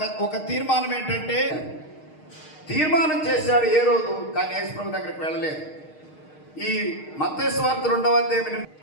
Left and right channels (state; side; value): late; right; 6.5 ms